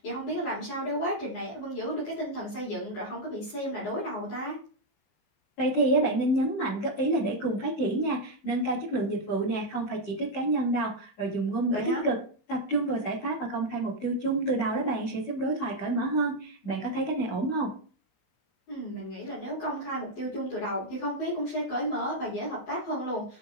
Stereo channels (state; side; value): late; right; 19 ms